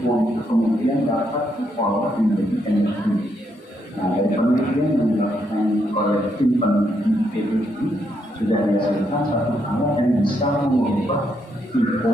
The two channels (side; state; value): both; normal; correlation 0.77